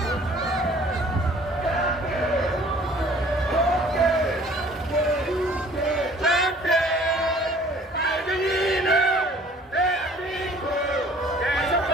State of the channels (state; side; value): normal; both; correlation 0.54